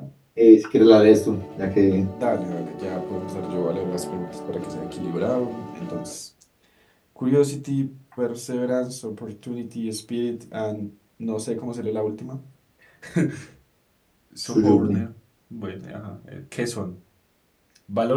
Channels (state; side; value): identical; both; correlation 1.00